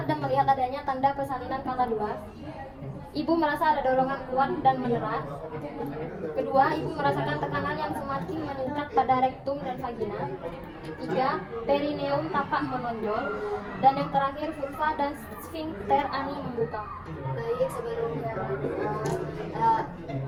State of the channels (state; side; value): identical; both; correlation 1.00